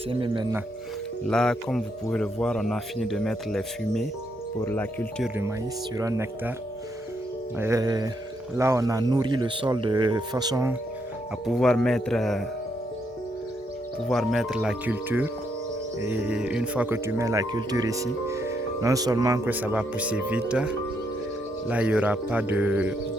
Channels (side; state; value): both; normal; correlation 0.77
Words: maintenant. Là, comme vous pouvez le voir, on a fini de mettre les fumées pour la culture du maïs sur un hectare. Et là, on a nourri le sol de façon à pouvoir mettre la culture. Et une fois que tu mets la culture ici, non seulement que ça va pousser vite, là il n'y aura pas